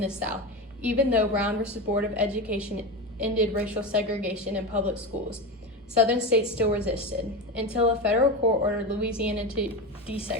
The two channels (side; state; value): both; normal; correlation 0.21